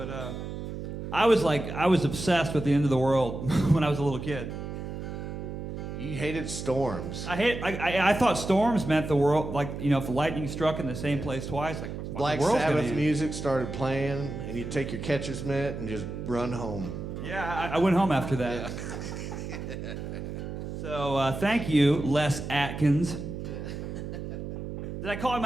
I was obsessed with the end of the world when I was a little kid. You hated storms. I thought storms meant the world, if lightning struck in the same place twice, Black the world's gonna Sabbath end. music started playing, and you'd take your catcher's mitt and just run home. Yeah, I went home after that. Yeah. So thank you, Les Atkins. Did I call him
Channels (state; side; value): noise; right; hum, 7 dB below the sound